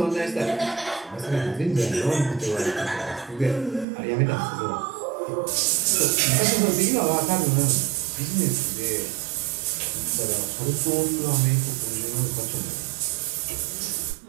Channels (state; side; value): drops out; left; at 3.9 s